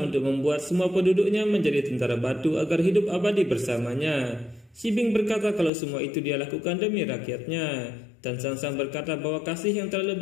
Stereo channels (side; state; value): right; drops out; at 5.7 s